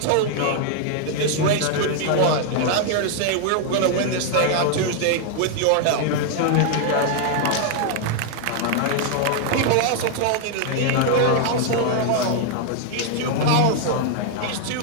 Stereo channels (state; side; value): different; both; correlation 0.00